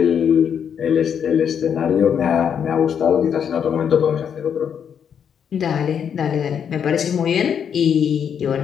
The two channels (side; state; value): right; quieter; 7.9 dB